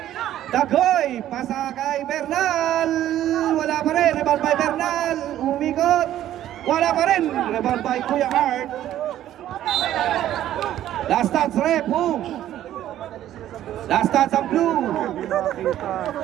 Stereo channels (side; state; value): left; quieter; 12.4 dB